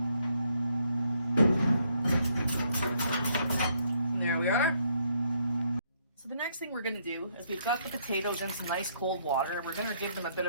And there we are. So the next thing we're going to do is we've got the potatoes in some nice cold water, and we're going to give them a bit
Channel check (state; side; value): inverted; both; correlation -0.71